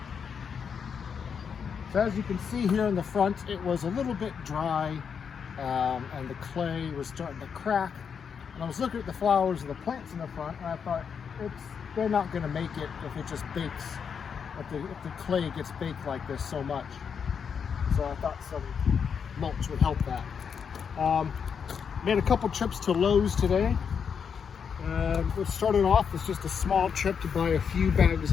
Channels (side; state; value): right; quieter; 6.8 dB